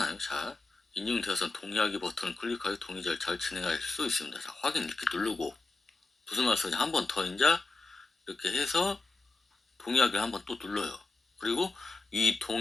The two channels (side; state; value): right; quieter; 3.5 dB